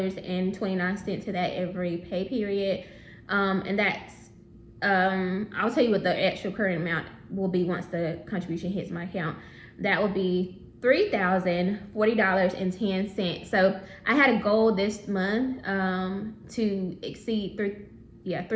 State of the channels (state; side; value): identical; both; correlation 1.00